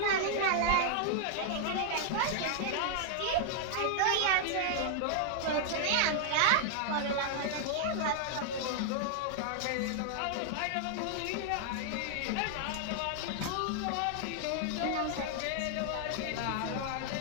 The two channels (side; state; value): both; different; correlation -0.01